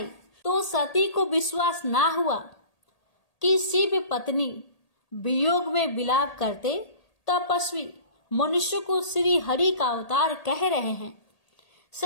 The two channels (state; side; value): late; right; 1.8 ms